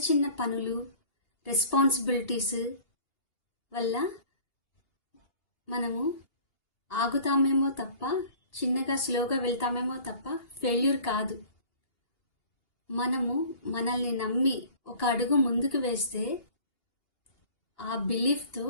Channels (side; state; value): right; late; 2.8 ms